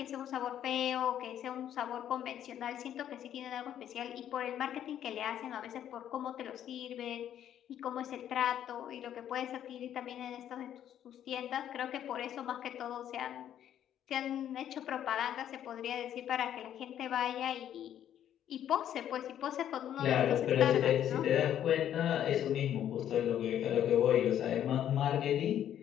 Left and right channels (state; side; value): quieter; right; 10.5 dB